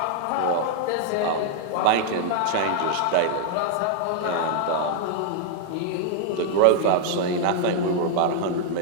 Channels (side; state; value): both; different; correlation -0.01